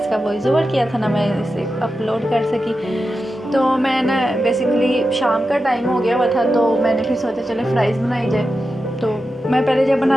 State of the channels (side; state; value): both; normal; correlation 0.91